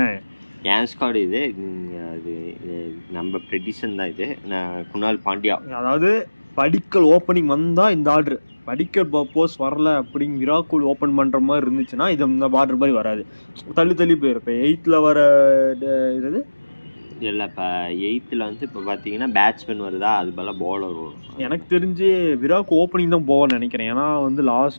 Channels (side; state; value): both; inverted; correlation -1.00